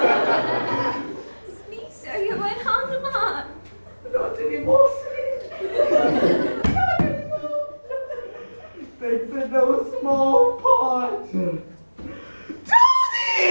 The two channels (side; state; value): both; inverted; correlation -1.00